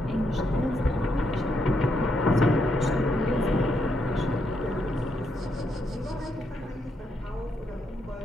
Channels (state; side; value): normal; both; correlation 0.78